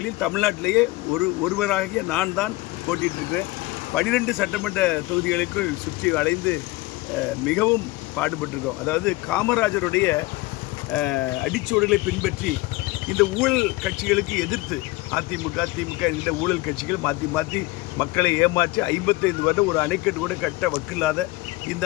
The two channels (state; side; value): quieter; right; 20.9 dB